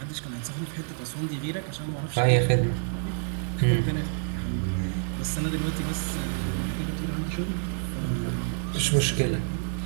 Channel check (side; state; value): left; silent; 59 dB below the other